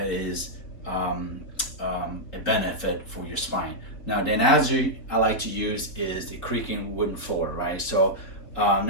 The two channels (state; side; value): late; right; 3.6 ms